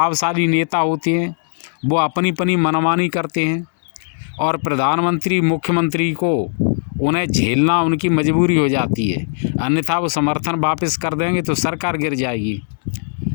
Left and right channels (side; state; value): right; silent; digital silence